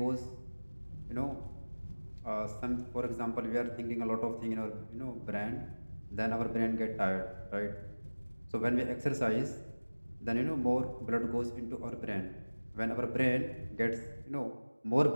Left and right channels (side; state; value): both; inverted; correlation -1.00